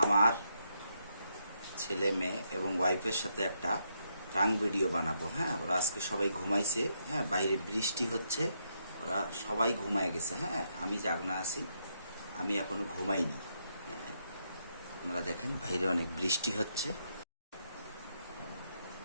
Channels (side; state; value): both; inverted; correlation -0.78